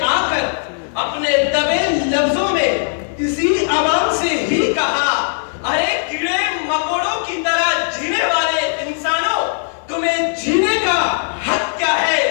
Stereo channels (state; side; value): silent; right; digital silence